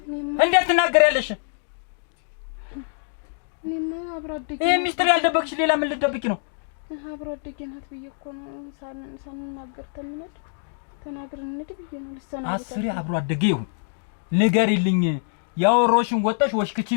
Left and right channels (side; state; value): right; silent; digital silence